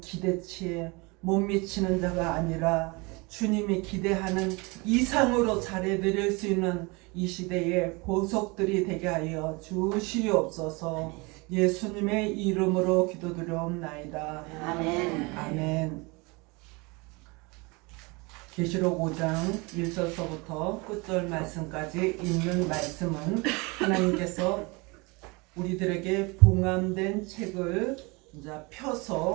기대치에 못 미치는 자가 아니라 주님이 기대하는 이상으로 잘해드릴 수 있는 이 시대의 보석들이 되게 하여 주시옵소서. 예수님의 이름으로 기도드려옵나이다. 아멘. 아멘. 계시록 5장 1절서부터 끝절 말씀까지 있는 말씀은 하나님께서 우리들에게 봉함된 책을 이제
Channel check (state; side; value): quieter; left; 27.0 dB